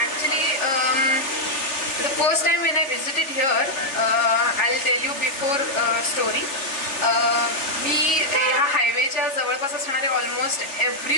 Actually, the first time when I visited here, I'll tell you before story. मी ह्या हायवेच्या जवळपास असणारे ऑलमोस्ट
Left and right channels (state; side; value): late; right; 3.3 ms